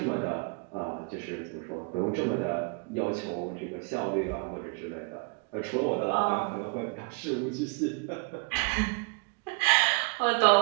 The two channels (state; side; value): quieter; left; 32.7 dB